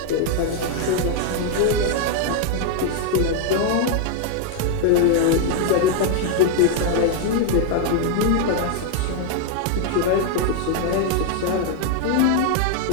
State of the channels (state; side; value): different; both; correlation 0.00